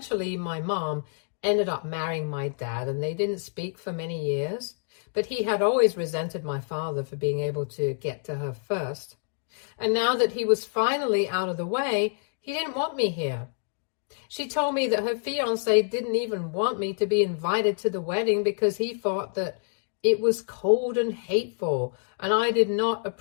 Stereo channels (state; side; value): silent; right; 60 dB below the other